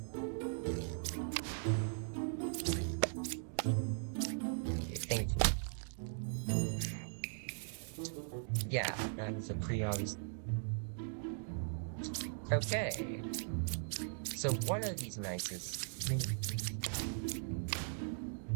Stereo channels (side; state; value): left; silent; digital silence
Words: Thank you. Yeah, that's a pretty obvious. Okay. So one of these knights is.